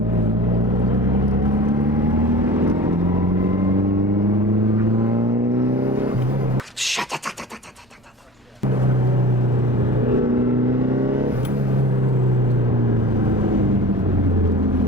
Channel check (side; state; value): both; normal; correlation 0.38